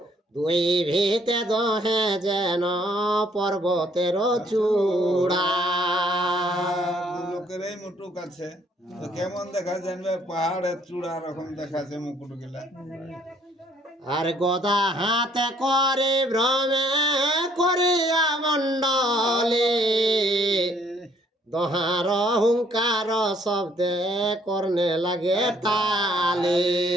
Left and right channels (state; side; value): normal; both; correlation 0.63